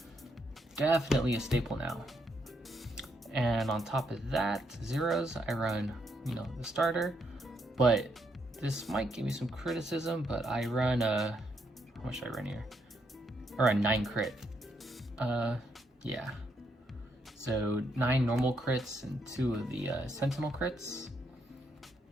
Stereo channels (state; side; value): normal; both; correlation 0.76